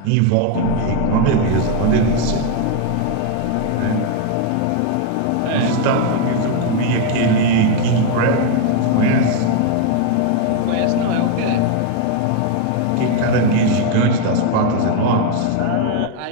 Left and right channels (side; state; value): both; different; correlation 0.01